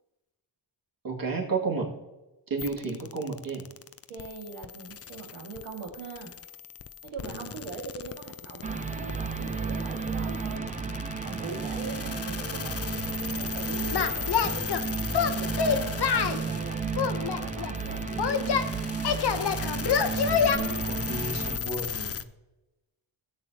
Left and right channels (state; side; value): normal; both; correlation 0.17